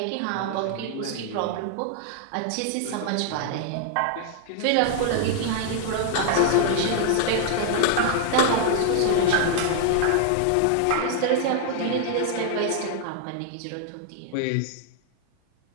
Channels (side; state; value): both; different; correlation 0.00